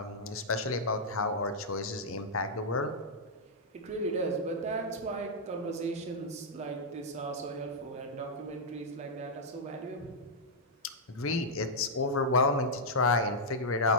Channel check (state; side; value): normal; both; correlation -0.08